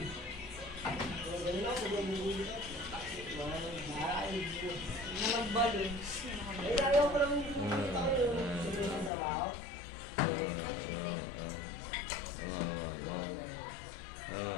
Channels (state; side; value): drops out; right; at 9.1 s